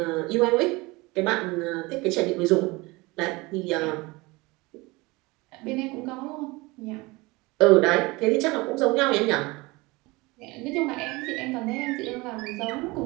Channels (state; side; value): quieter; left; 23.5 dB